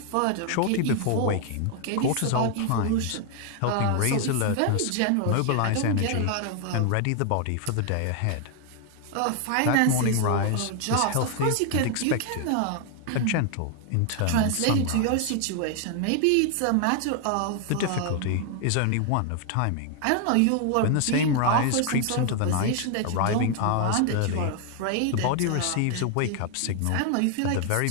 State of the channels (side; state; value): both; different; correlation 0.00